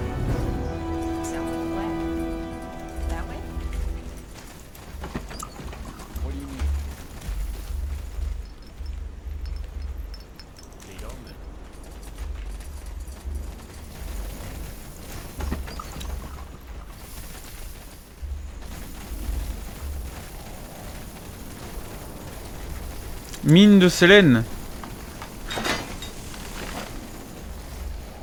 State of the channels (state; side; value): identical; both; correlation 1.00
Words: Mine de Sélène.